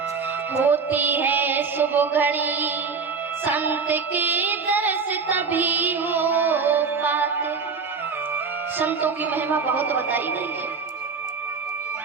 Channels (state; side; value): quieter; left; 5.2 dB